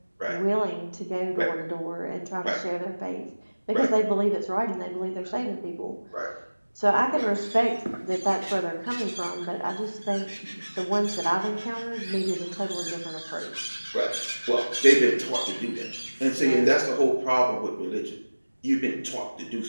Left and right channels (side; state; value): both; inverted; correlation -1.00